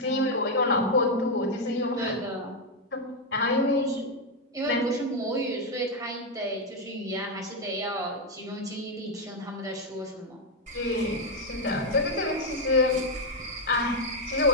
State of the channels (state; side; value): normal; both; correlation 0.03